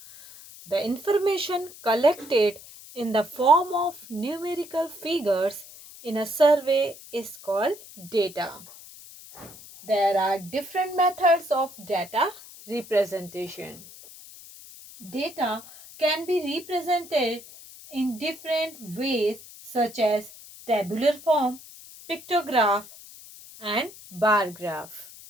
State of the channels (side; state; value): left; noise; hiss, 18 dB below the sound